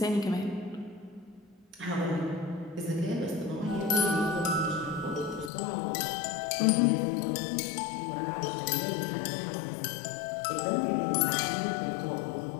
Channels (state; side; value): drops out; right; at 5.5 s